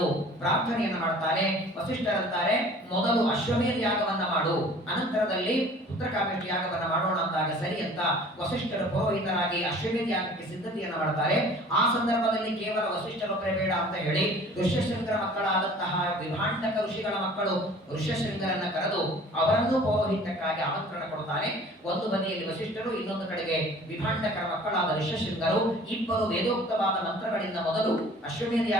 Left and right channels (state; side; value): normal; both; correlation 0.48